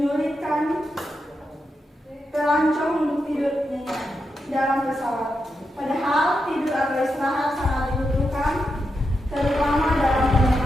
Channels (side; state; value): both; normal; correlation 0.86